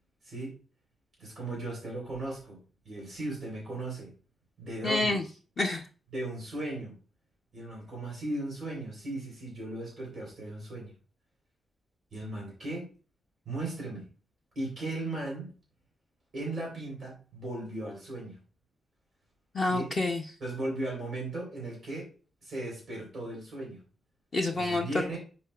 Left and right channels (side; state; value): both; normal; correlation 0.76